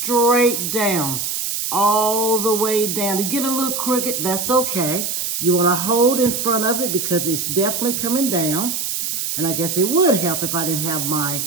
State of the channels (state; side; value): noise; right; hiss, 2 dB below the sound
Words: down, all the way down. To get a little crooked, that's okay. You want to hold in front of it because it's definitely coming down. And I guess it would help if I didn't have my